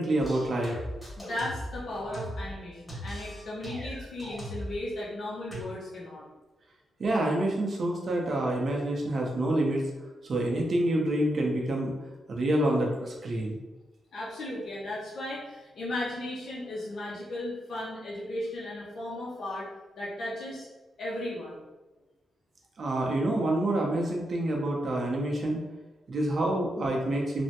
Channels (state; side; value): normal; both; correlation 0.84